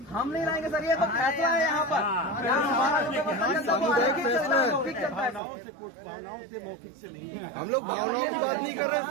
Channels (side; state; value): left; drops out; at 5.4 s